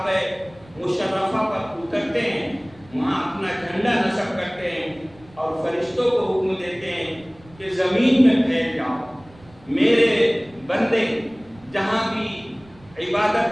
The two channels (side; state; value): right; noise; rumble, 25 dB below the sound